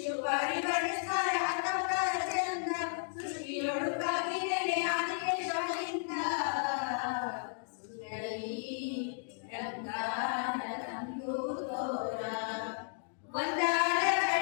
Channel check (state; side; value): silent; right; digital silence